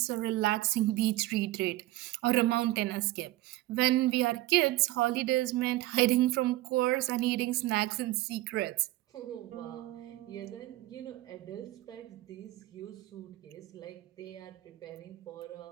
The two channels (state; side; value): quieter; left; 17.2 dB